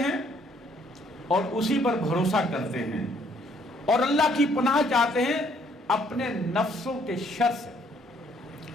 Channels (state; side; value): normal; both; correlation 0.65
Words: اور اسی پر بھروسہ کرتے ہیں اور اللہ کی پناہ چاہتے ہیں اپنے نفسوں کے شر سے